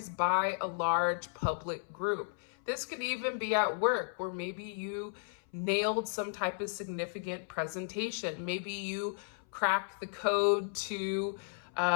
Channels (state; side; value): silent; right; 55 dB below the other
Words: by a large public group. This could even be at work, where maybe you nailed some type of significant presentation. Maybe you cracked the code to